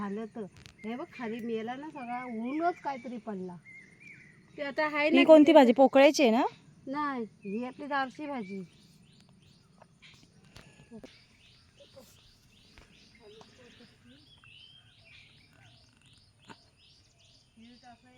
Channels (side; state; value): both; identical; correlation 1.00